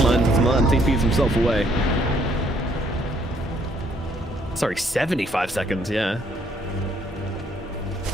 as Martin TPs himself away. Sorry, 75 seconds, yeah.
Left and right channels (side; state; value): both; normal; correlation 0.67